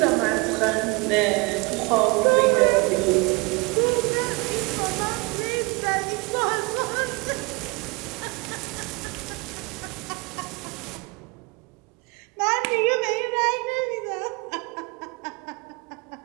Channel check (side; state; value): left; quieter; 27.3 dB